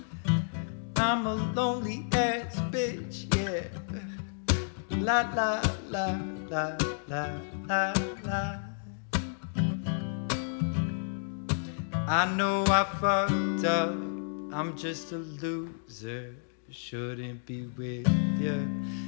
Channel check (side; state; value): right; silent; digital silence